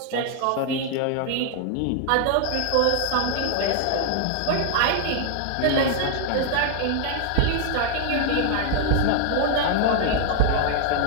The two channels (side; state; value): both; different; correlation 0.00